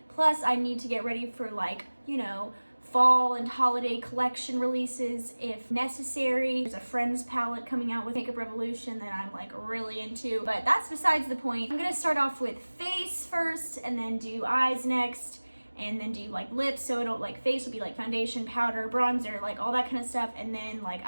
Plus I need to get ready for like, you know, fall and holiday collection releases if necessary. There's a Friends palette coming out with Makeup Revolution that I'm like really into, but that's besides the point. I'm gonna start off with face first and then do eyes next and then do like lips. So it'll like face will be like foundation, powder, bronzer, like all that kind of stuff. And then like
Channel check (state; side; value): inverted; both; correlation -1.00